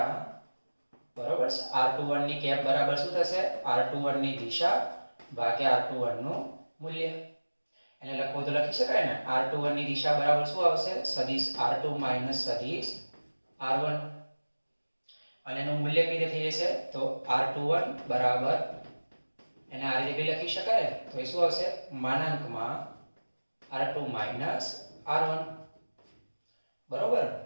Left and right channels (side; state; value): both; inverted; correlation -1.00